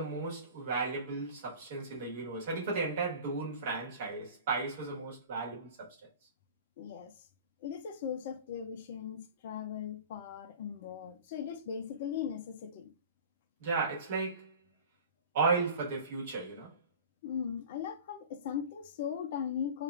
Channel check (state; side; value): inverted; both; correlation -0.39